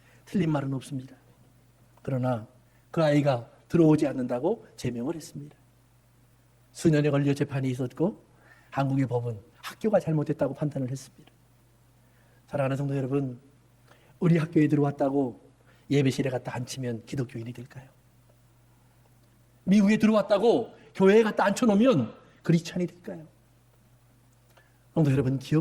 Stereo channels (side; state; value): both; identical; correlation 1.00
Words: 틀린 말은 없습니다. 그러나 그 아이가 들어오지 않는다고 제명을 했습니다. 수년에 걸려 재판이 있었고 한국의 법은 학교가 잘못했다고 판단을 했습니다. 사랑하는 성도 여러분, 우리 학교에 들어왔다고 예배실에 갔다 앉히면 기독교인이 될까요? 미국에 들어왔다고 교회에 갖다 앉혀놓으면 그리스찬이 될까요? 성도 여러분,